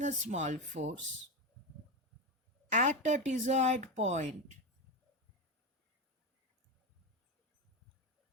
a small force at a desired point.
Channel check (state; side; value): normal; both; correlation 0.15